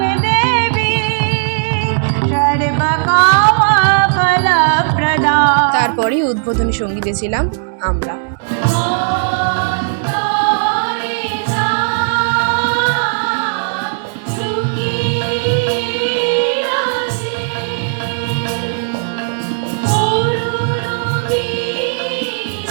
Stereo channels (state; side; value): silent; left; digital silence